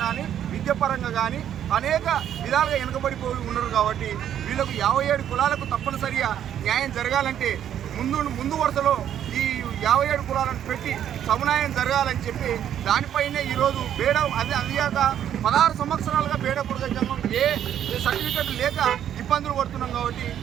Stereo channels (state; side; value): quieter; left; 10.1 dB